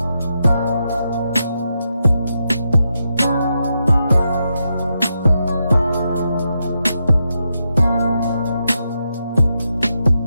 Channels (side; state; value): both; inverted; correlation -0.84